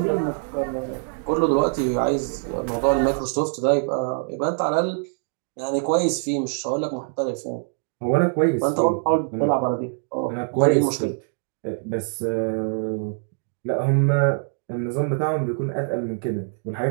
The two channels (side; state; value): left; silent; 63 dB below the other